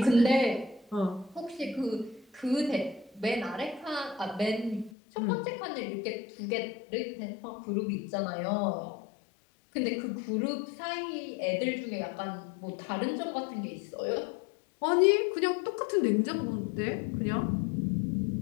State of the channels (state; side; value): drops out; right; at 4.9 s